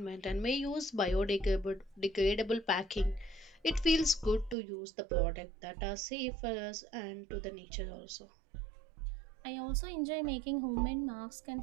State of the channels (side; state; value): left; drops out; at 4.5 s